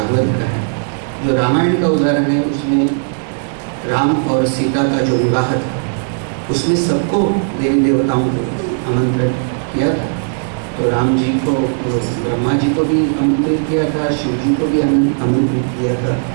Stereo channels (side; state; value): left; silent; 69 dB below the other